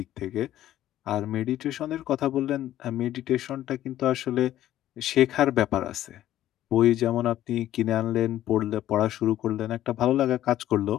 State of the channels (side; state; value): right; quieter; 13.0 dB